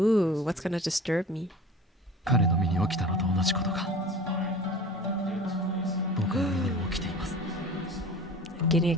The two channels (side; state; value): both; normal; correlation 0.40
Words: what's gonna disturb me? 彼の身に起きたのと同じことが僕の身にも起きています。 Getting